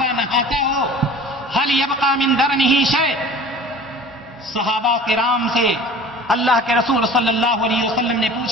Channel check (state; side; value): normal; both; correlation 0.43